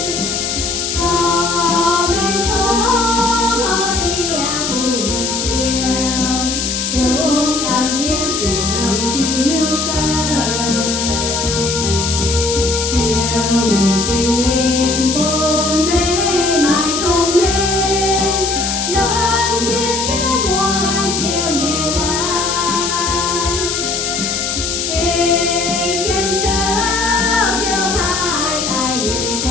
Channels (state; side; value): noise; left; hiss, 2 dB below the sound